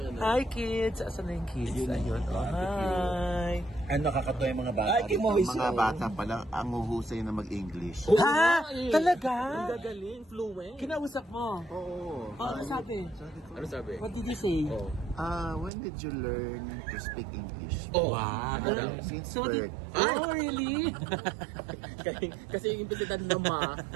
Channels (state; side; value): drops out; left; at 15.7 s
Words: Hi, kids. Asan na yung kids? Ayun. Oh, hi. Ano nakakatawa yung mga bata? Ay, Ang mga bata pala ang huhusay na mag-English. Ha? Talaga? Gagaling, fluent. Kinausap mo? Oo. Oh, ano sabi? Ano sabi? What did you say? Oh. When did you learn to speak English? Oh. Wow. Since So, birth. oh, really? Kasi yung implisidad na